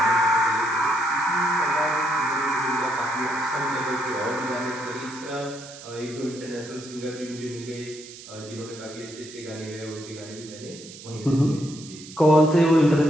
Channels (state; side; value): noise; right; hiss, 16 dB below the sound